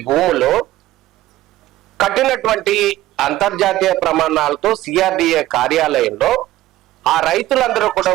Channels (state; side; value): quieter; left; 15.5 dB